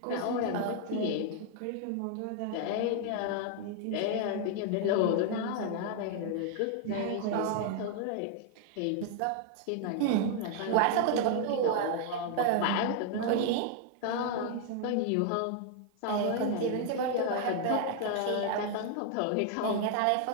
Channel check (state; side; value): different; both; correlation 0.00